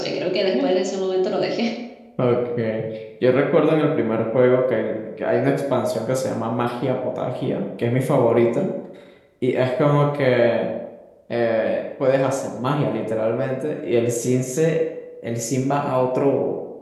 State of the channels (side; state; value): both; identical; correlation 1.00